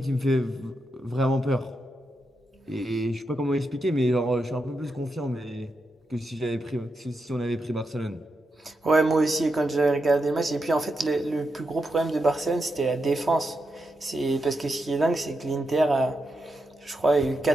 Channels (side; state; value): both; normal; correlation 0.85